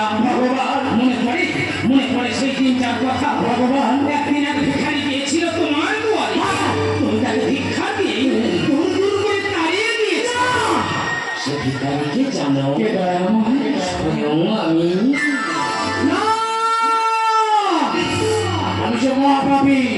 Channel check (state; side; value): identical; both; correlation 1.00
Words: ভগবান মনে পড়ে সেই দিনটার কথা। ভগবান একদিন এক ভিখারি গিয়েছিল তোমার দুয়ারে, তুমি তাকে ভিক্ষা দিয়ে দূর দূর করে তাড়িয়ে দিয়েছ। সে ভিখারিকে জানো? স্বয়ং আমি। আমি যে মহাপাপী,